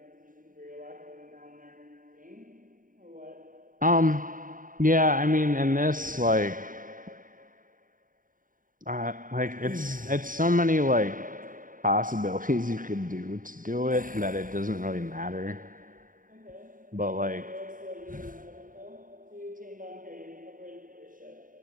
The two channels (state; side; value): late; left; 0.39 ms